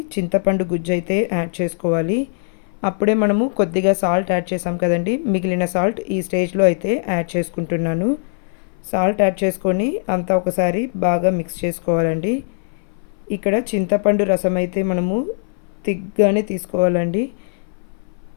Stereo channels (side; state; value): right; silent; 61 dB below the other